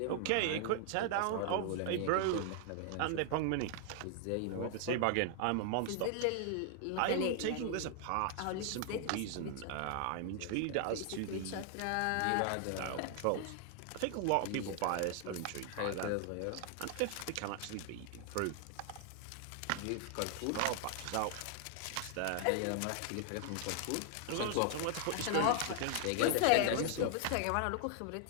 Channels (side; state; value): both; different; correlation 0.00